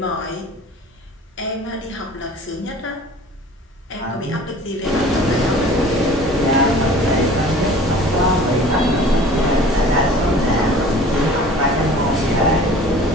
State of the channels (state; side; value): normal; both; correlation 0.46